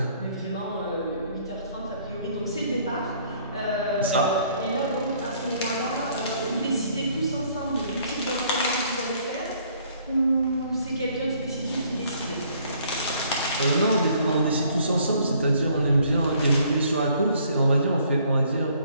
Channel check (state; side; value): inverted; both; correlation -0.62